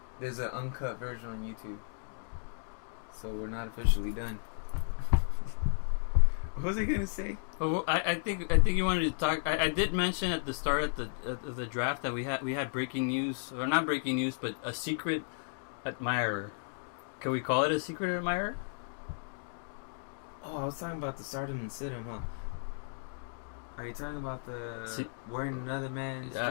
There's an uncut version on YouTube. So we're not officially done. What was I gonna say? Well, I think you wanted to talk. I did mention at the start of the draft that we had breaking news, or not breaking news, but a secret admirer. Can we call it a secret admirer? Oh, I was talking about the Stardom and Sit 'em, huh? Are you talking about the wearing another man's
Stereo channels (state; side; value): silent; right; digital silence